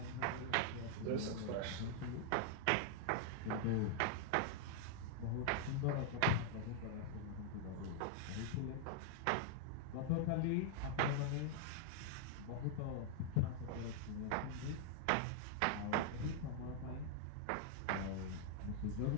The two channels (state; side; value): different; both; correlation -0.01